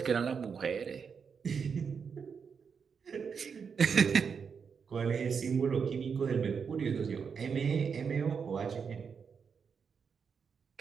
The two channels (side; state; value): left; quieter; 6.2 dB